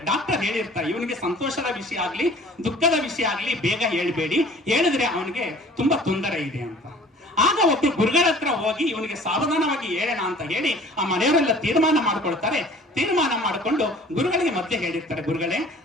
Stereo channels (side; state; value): both; normal; correlation 0.49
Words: ಡಾಕ್ಟರ್ ಹೇಳಿರ್ತಾರೆ, ಇವನಿಗೆ ಸಂತೋಷದ ವಿಷಯ ಆಗ್ಲಿ ದುಃಖದ ವಿಷಯ ಆಗ್ಲಿ ಬೇಗ ಹೇಳ್ಬೇಡಿ, ಹೇಳಿದ್ರೆ ಅವನಿಗೆ ತುಂಬಾ ತೊಂದರೆ ಇದೆ ಅಂತ. ಆಗ ಒಬ್ರು ಗುರುಗಳ ಹತ್ರ ಹೋಗಿ ಇವನಿಗೆ ಸಾವಧಾನವಾಗಿ ಹೇಳೋಣ ಅಂತ ಹೇಳಿ ಆ ಮನೆಯವರೆಲ್ಲ ತೀರ್ಮಾನ ಮಾಡ್ಕೊಳ್ತಾರೆ. ತೀರ್ಮಾನ ಮಾಡಿಕೊಂಡು ಗುರುಗಳಿಗೆ ಮತ್ತೆ ಹೇಳಿರ್ತಾರೆ, ಗುರುಗಳೇ,